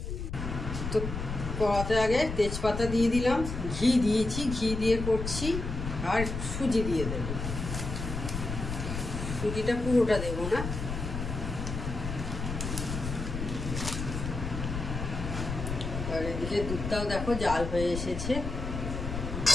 তো কড়াতে আগে তেজপাতা দিয়ে দিলাম, ঘি দিয়েছি, ঘি দিয়ে করছি। আর সুজি দিয়ে দেবো, সুজিটা পুরোটা দেবো না। আর এদিকে দুধটাও দেখো জাল হয়ে এসেছে।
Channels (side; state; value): left; noise; rumble, 5 dB below the sound